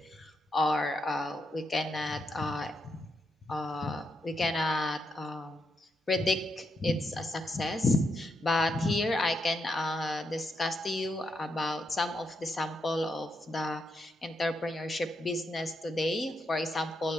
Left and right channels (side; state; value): both; normal; correlation 0.82